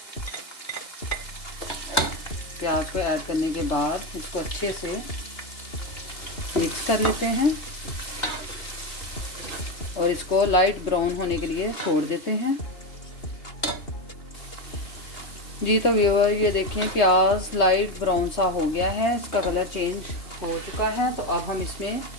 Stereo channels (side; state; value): right; late; 3.2 ms